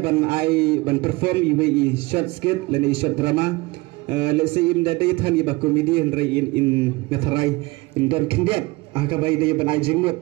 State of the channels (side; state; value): left; quieter; 22.7 dB